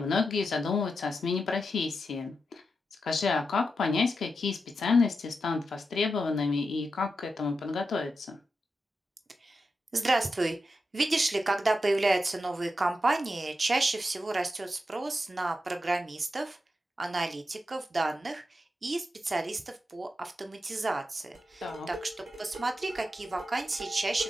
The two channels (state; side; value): normal; both; correlation 0.88